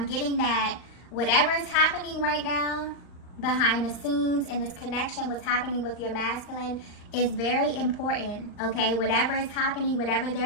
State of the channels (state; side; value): late; right; 39 ms